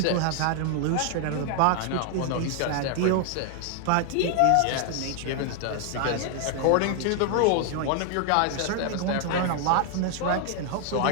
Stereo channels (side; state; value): both; different; correlation 0.00